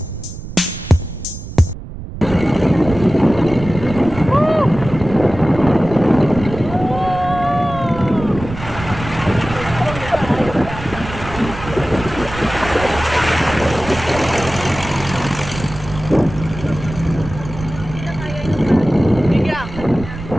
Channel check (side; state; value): right; noise; rumble, 11 dB below the sound